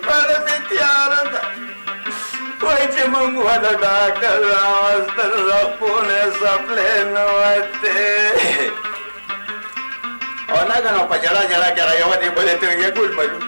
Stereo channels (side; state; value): both; inverted; correlation -1.00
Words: پړه مې تیاره ده وایي چې موږ ونه ډاکټر راوستل رپونه سپلې نه وتې او ناګنه په جړا کې هغه یوه دې بلې ته ویې ګل